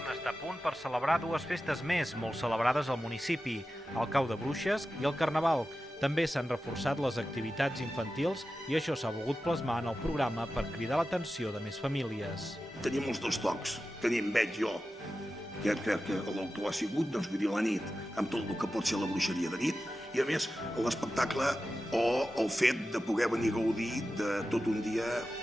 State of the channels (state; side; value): normal; both; correlation 0.93